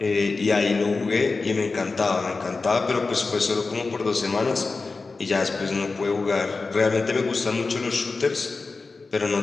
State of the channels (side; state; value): right; quieter; 4.0 dB